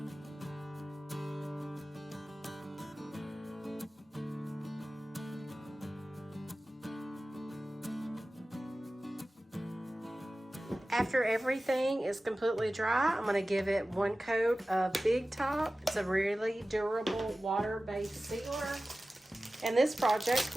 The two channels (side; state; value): both; normal; correlation 0.96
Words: After everything is completely dry, I'm going to give it one coat of Big Top. It's a really durable water-based sealer, and this project